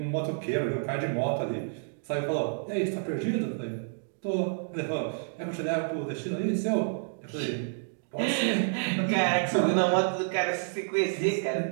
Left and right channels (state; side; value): silent; left; digital silence